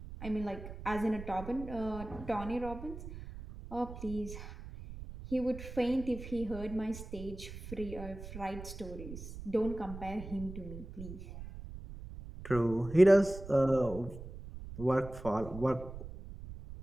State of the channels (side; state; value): right; noise; rumble, 11 dB below the sound